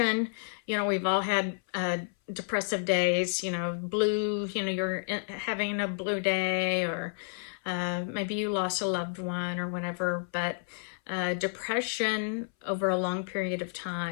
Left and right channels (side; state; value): right; silent; 57 dB below the other